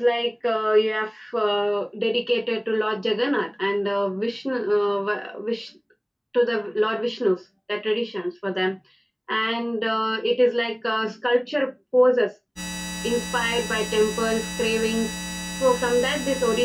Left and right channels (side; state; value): both; identical; correlation 1.00